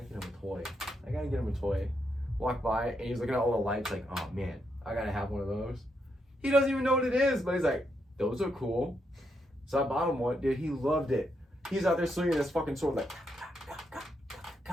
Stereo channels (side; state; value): both; normal; correlation 0.80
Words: gotta get him a toy. Walked by, and he's looking at all the lights like, oh man, I gotta have one of those. He doesn't even know what it is, but he's like, those are cool. So I bought him one. Dude, he loved it. He's out there swinging this fucking sword like,